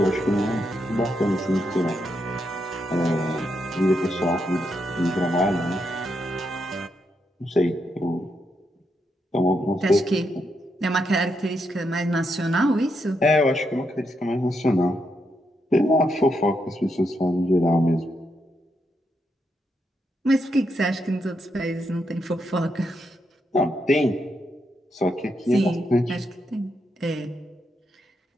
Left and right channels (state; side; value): normal; both; correlation 0.81